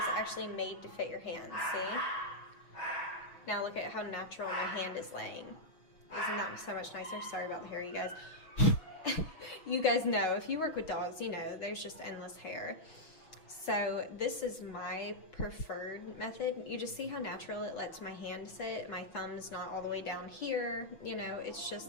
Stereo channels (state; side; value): late; right; 6.3 ms